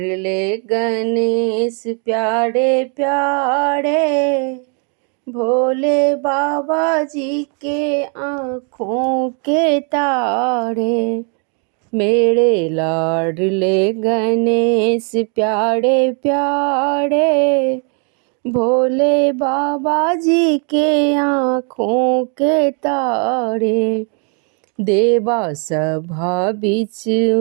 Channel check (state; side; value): quieter; left; 39.2 dB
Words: गणेश प्यारे प्यारे, भोले बाबा जी के आँखों के तारे। मेरे लाडले गणेश प्यारे प्यारे, भोले बाबा जी के आँखों के तारे। देवा सभा बीच